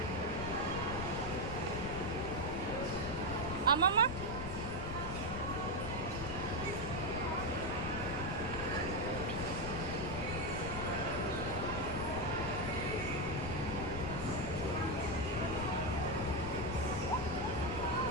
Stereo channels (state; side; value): noise; left; rumble, 6 dB below the sound